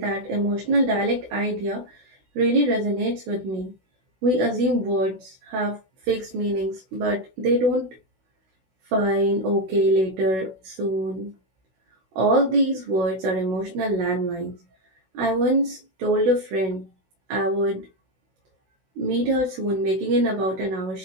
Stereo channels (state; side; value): late; left; 16 ms